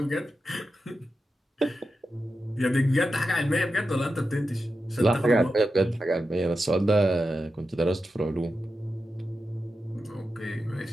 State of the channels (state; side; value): normal; both; correlation 0.90